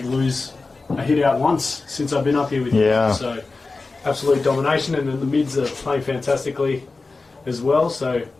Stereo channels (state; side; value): quieter; right; 3.8 dB